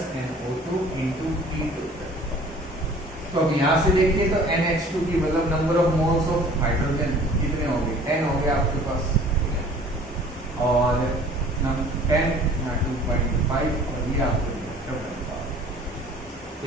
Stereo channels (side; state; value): both; normal; correlation 0.50